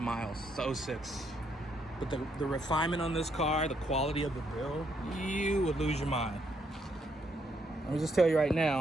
miles. It's 06. But the refinement on this car, the quality of the build, you would lose your mind. Let me just tell you right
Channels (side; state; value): both; normal; correlation 0.74